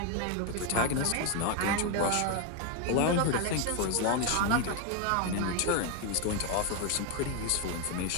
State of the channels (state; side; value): different; both; correlation 0.01